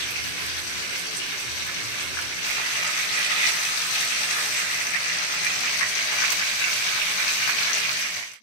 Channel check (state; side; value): late; right; 16 ms